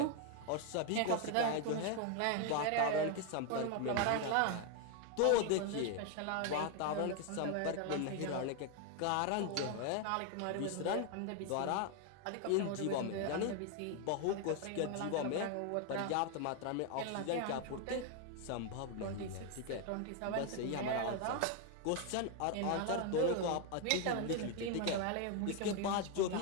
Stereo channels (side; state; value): both; different; correlation 0.01